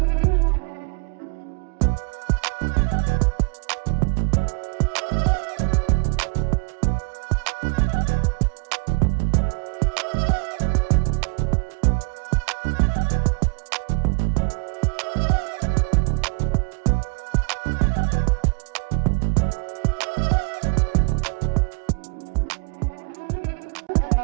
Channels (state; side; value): quieter; left; 36.0 dB